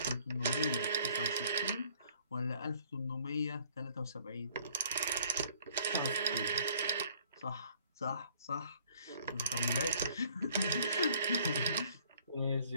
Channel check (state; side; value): inverted; both; correlation -0.59